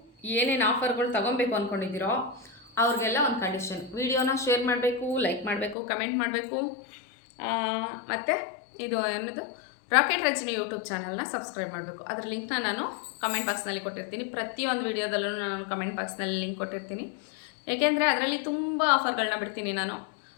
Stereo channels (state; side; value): drops out; right; at 5.8 s